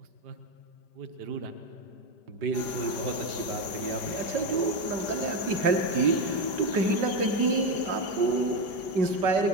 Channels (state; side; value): late; left; 5.1 ms